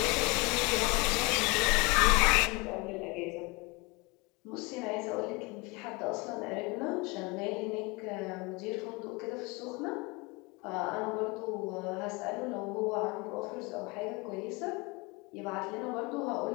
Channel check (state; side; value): quieter; right; 26.9 dB